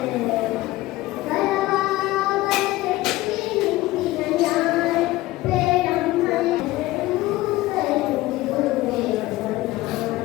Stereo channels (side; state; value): right; quieter; 18.0 dB